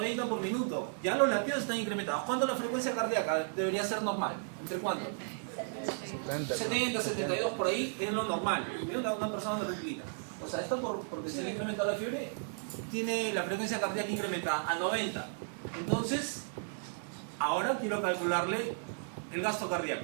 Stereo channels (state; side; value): silent; left; digital silence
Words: por minuto, ya los latidos están incrementados. ¿Cuándo la frecuencia cardíaca debería ser normal? ¿Entre cuánto? 70, 72 por ahí es lo normal, una persona tranquila. O sea, esto porque se le ha incrementado la fiebre, tiene la frecuencia cardíaca incrementada a 90. Entonces, ahora quiero calcularle el gasto